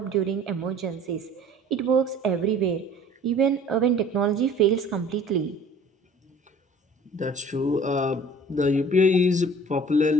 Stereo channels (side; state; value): both; normal; correlation 0.48